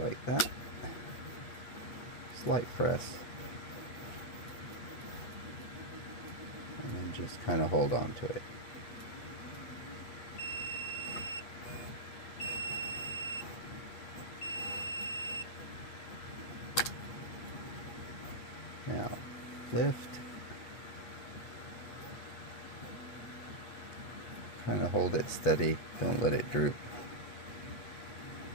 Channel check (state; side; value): late; right; 8.6 ms